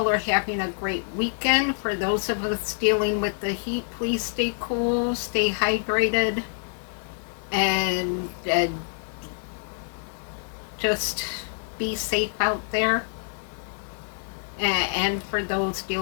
are having a great weekend. For those of us dealing with the heat, please stay cool, stay hydrated, and just be safe out there. And for those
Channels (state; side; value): silent; right; 61 dB below the other